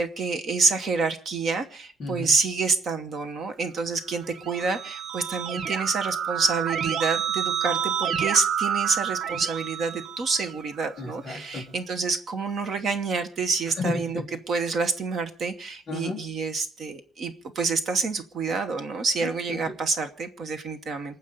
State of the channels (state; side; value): quieter; left; 4.3 dB